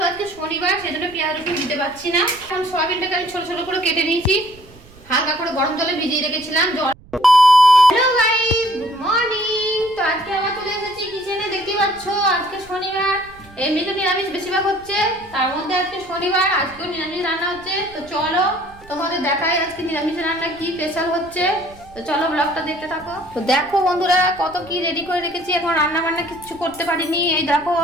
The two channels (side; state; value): right; noise; rumble, 24 dB below the sound